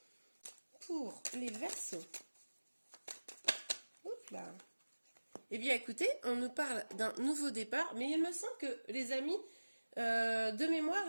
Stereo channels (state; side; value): inverted; both; correlation -1.00